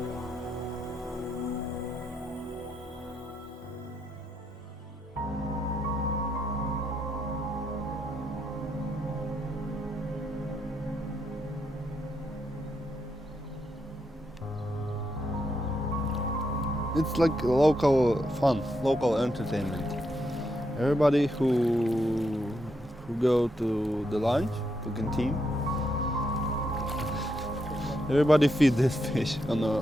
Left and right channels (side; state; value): both; normal; correlation 0.81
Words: It's like local fun, local entertainment. Everybody who go to the lunch, to canteen, everybody feed this fish on